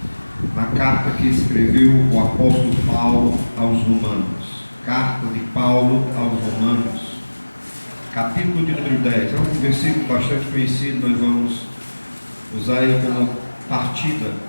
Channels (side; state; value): both; inverted; correlation -1.00